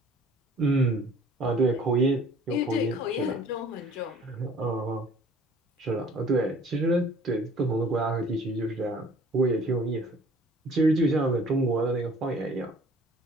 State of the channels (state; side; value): normal; both; correlation 0.53